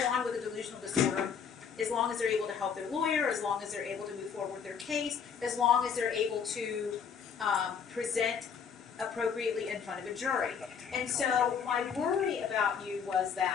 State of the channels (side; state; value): right; quieter; 6.9 dB